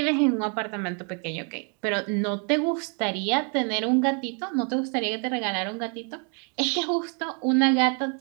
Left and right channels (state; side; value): quieter; left; 37.9 dB